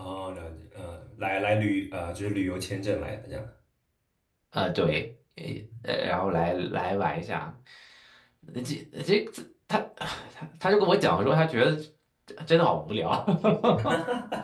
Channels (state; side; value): identical; both; correlation 1.00